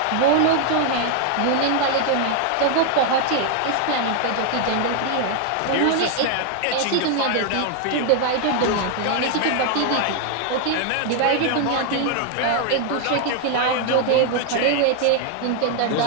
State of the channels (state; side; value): different; both; correlation 0.00